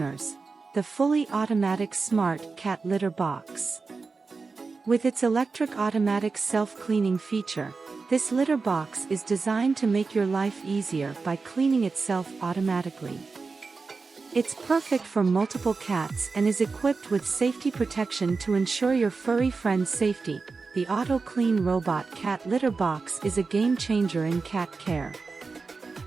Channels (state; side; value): quieter; left; 4.4 dB